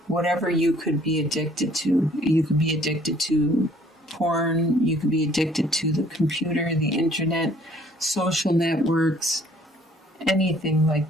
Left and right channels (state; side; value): normal; both; correlation 0.58